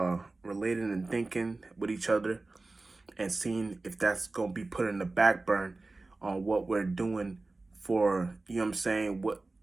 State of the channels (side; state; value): left; quieter; 3.3 dB